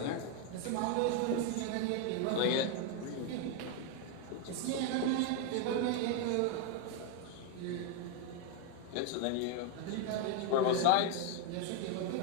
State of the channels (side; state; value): both; different; correlation 0.01